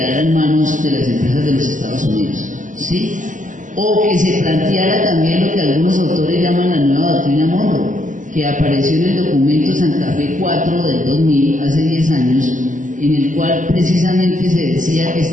en manos de las empresas de los Estados Unidos, ¿sí? O que se planteara también lo que algunos autores llaman la nueva doctrina Monroe, que apareció en el documento Santa Fe 4 del 2000, hace 10 años, en el cual precisamente se decía que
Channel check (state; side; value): late; left; 0.37 ms